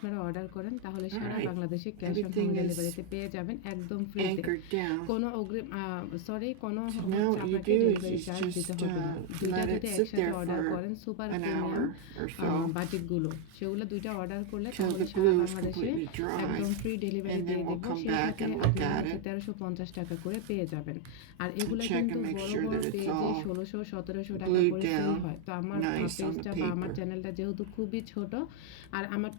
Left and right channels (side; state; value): both; different; correlation 0.01